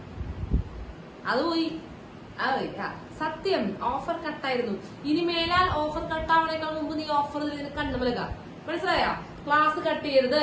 അത് പോയി. സത്യം, ഓഫർ കട്ടായിരുന്നു. ഇനി മേലാൽ ഓഫർ കട്ടാവണേക്കാൾ മുമ്പ് നീ ഓഫർ കണ്ടുമലക. മനസ്സിലായോ? ക്ലാസ് കട്ട് ചെയ്യരുത്,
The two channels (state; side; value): identical; both; correlation 1.00